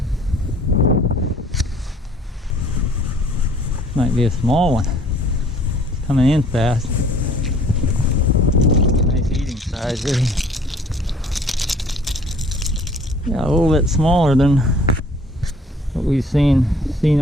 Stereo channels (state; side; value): normal; both; correlation 0.54